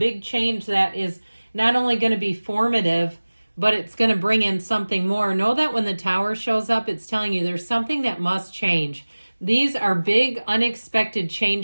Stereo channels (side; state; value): both; inverted; correlation -1.00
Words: change that is not only going to be formative, but it's going to bring in something more. Know that when the Tower shows up, it's telling you there's something that must change. These are big, unexpected